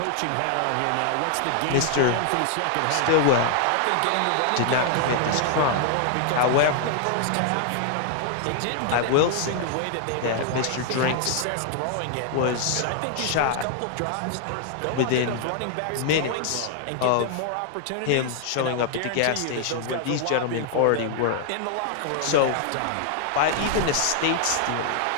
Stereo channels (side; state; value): both; different; correlation 0.00